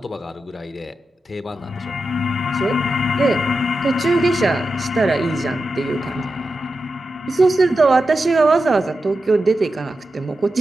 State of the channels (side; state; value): both; normal; correlation 0.90